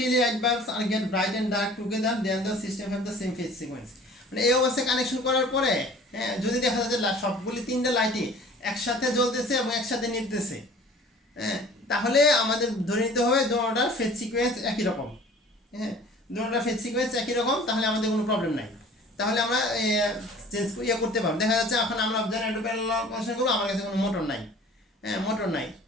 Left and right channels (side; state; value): both; normal; correlation 0.47